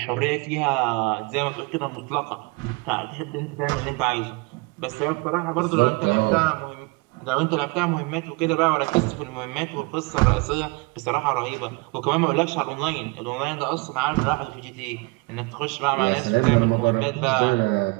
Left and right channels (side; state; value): left; quieter; 27.3 dB